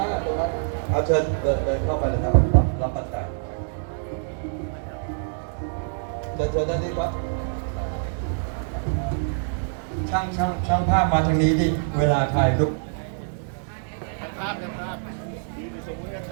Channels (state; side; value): silent; left; digital silence